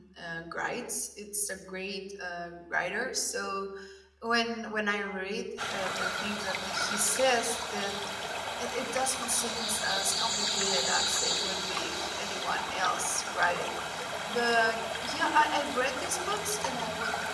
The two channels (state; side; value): identical; both; correlation 1.00